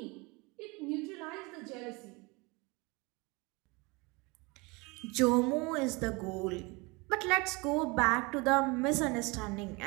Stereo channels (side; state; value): left; quieter; 26.5 dB